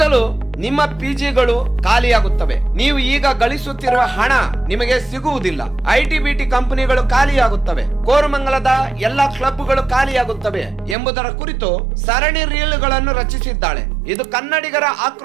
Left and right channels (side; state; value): left; drops out; at 11.0 s